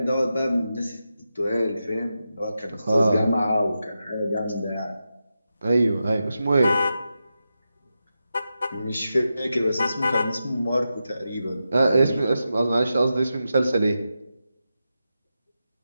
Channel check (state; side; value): inverted; both; correlation -0.89